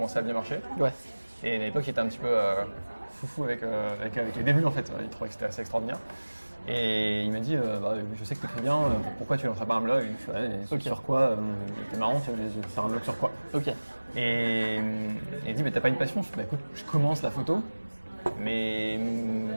à bien marcher. Ouais. Et à l'époque, il était un petit peu foufou avec les débuts en fait. Il trouvait que c'était assez extraordinaire. Et il m'a dit je sais que tu écris bien, pourquoi tu lancerais pas un blog? Il fait Ok. sur quoi? T'es marrant, tu veux faire un blog sur quoi? Ok. Et il dit t'as pas une passion? Je dis écoute, je commence la photo, mais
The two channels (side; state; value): both; inverted; correlation -1.00